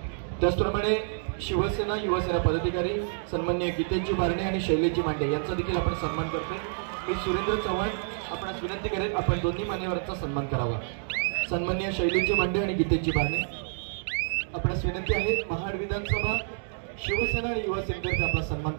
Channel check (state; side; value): silent; left; digital silence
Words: त्याचप्रमाणे शिवसेना युवासेना पदाधिकारी सन्माननीय गीतेशजी बारणे आणि शैलेशजी मांडे यांचा देखील आपण सन्मान करतोय. मी सुरेंद्र चव्हाण आपणास विनंती करेन आपण दोन्ही मान्यवरांचा सन्मान करावा. सन्माननीय शैलेशजी मांडे आणि गीतेशजी बारणे आपणास विनंती आहे, महाड विधानसभा शिवसेना आणि युवा सेनेतर्फे आपला सन्मान